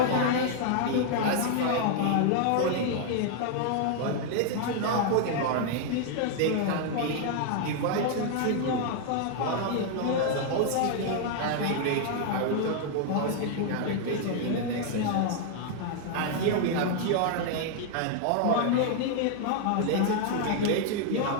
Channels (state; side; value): different; both; correlation 0.00